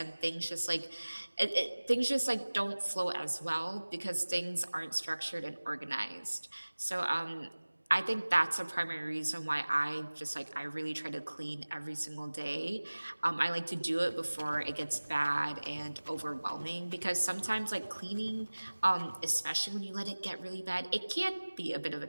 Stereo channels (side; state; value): both; inverted; correlation -1.00